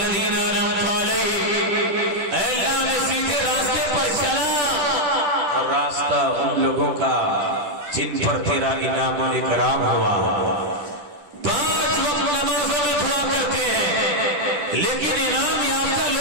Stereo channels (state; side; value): late; left; 10 ms